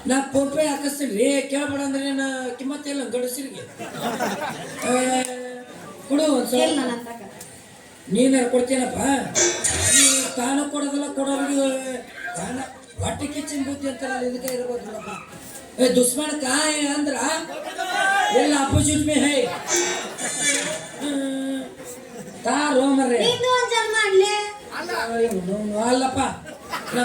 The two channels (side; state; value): both; identical; correlation 1.00